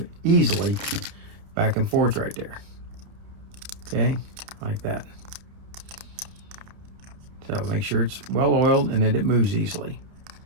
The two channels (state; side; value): late; left; 30 ms